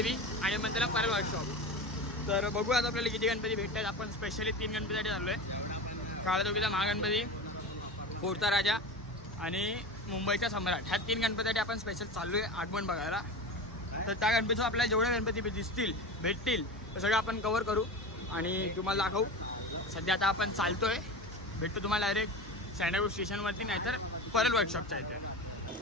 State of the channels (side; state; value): both; normal; correlation 0.27